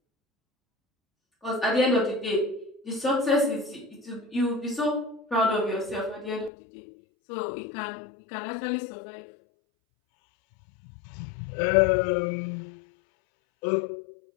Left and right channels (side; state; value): right; drops out; at 6.5 s